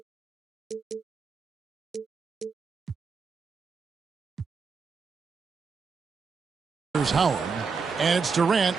Here's Howard, and it's Durant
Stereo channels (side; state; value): left; quieter; 5.2 dB